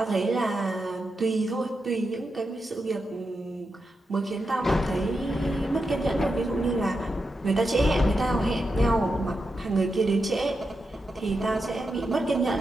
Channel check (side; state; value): both; normal; correlation 0.87